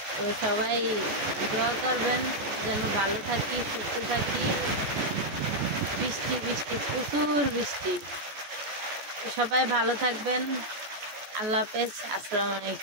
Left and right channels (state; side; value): late; left; 14 ms